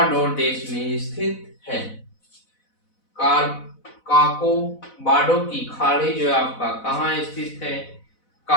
देश में स्थित है। काको बाडो की खाड़ी जो है आपका कहाँ स्थित है?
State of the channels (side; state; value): right; late; 4.0 ms